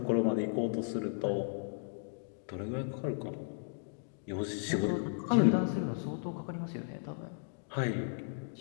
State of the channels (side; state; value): right; silent; digital silence